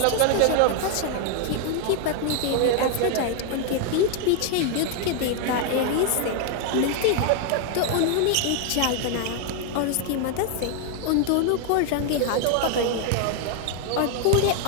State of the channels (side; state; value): both; different; correlation 0.00